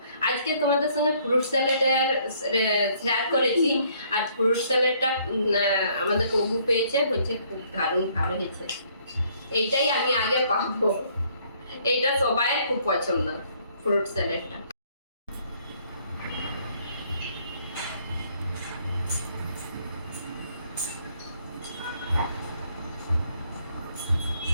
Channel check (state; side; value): inverted; both; correlation -0.65